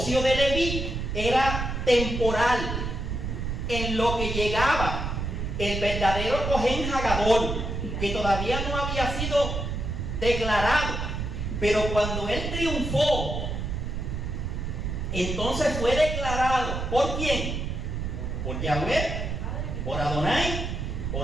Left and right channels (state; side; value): noise; right; rumble, 3 dB below the sound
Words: de Leví era temporal, en lo que llegaba el verdadero Cohen Hagadol, que todavía no había sido declarado. Pero cuando él triunfó, entonces fue declarado. ¿Por quién? Por Yahweh, por Adonai,